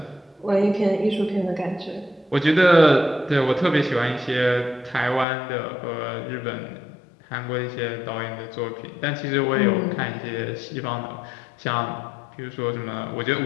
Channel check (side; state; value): right; drops out; at 5.2 s